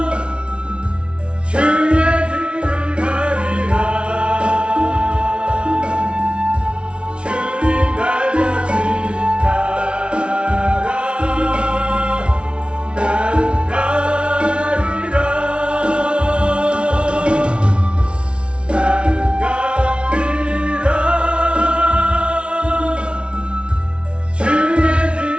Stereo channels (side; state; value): left; late; 0.059 ms